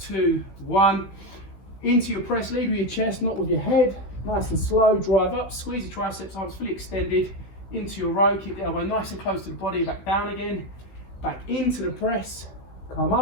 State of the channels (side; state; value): right; late; 16 ms